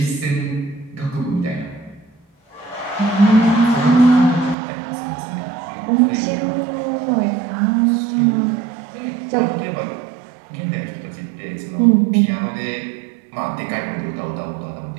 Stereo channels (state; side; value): drops out; left; at 4.5 s